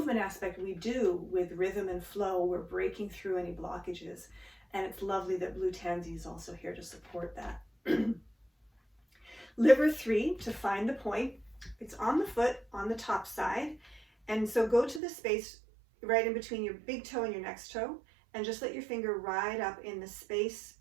aspect, we do with rhythm and flow, we're breaking through any blockages. And it's lovely that blue tansy is also here to support that. Liver 3, to find the point, it's on the foot, on the top side. And so go to the space right in between your big toe and your next toe, and just let your finger ride up in the space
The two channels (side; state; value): left; drops out; at 15.0 s